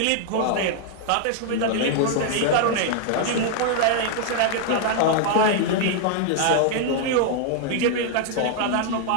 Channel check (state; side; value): different; both; correlation 0.00